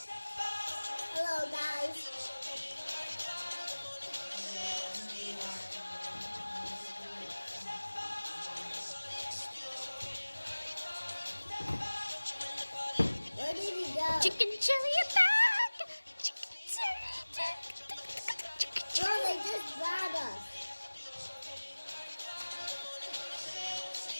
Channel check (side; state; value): both; inverted; correlation -1.00